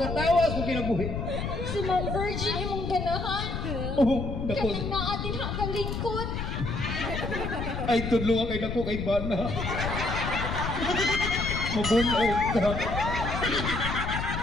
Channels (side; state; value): left; noise; rumble, 3 dB below the sound